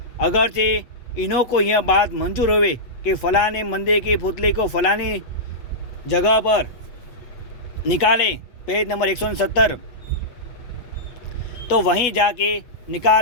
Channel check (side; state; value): right; late; 8.2 ms